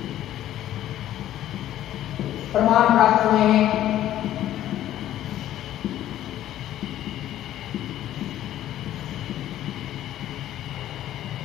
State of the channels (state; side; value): quieter; right; 12.7 dB